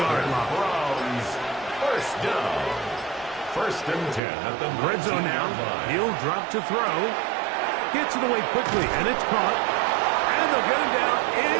line. Browns 1st down. 1st and 10 at the Red zone now. He'll drop to throw. Gets it away quickly, and it's caught. And they'll get him down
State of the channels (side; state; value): left; drops out; at 4.2 s